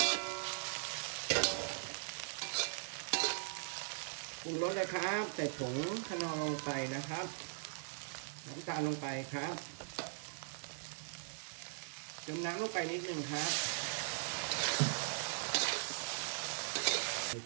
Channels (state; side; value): silent; left; digital silence